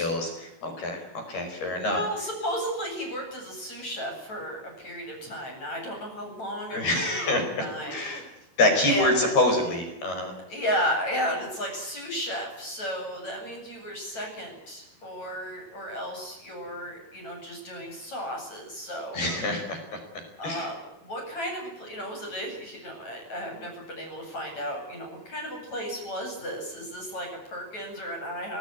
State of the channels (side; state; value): right; late; 9.0 ms